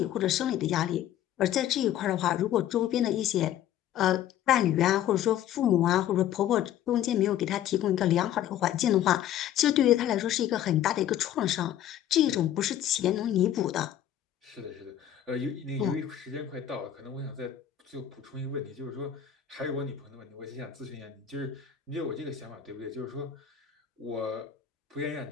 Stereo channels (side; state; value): right; quieter; 11.0 dB